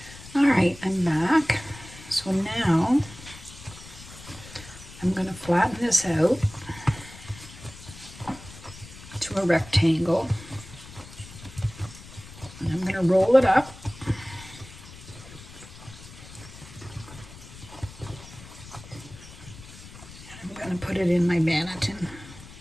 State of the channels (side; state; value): left; noise; rumble, 17 dB below the sound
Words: All right, I'm back. So now I'm going to flatten this out to a rectangle. And I'm going to roll it up. And I'm going to put it in my banneton.